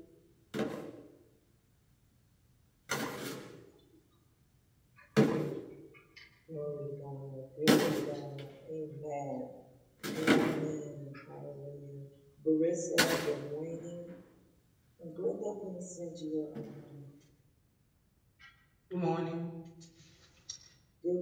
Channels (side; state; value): both; identical; correlation 1.00